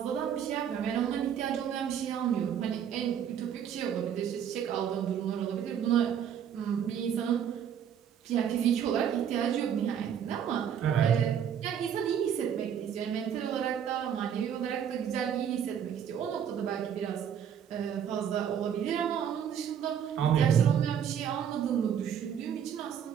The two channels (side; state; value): left; quieter; 8.7 dB